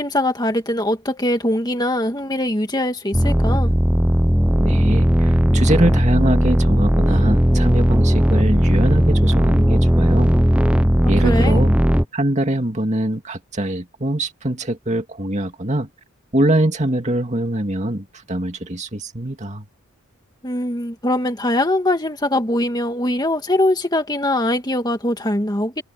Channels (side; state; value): both; normal; correlation 0.87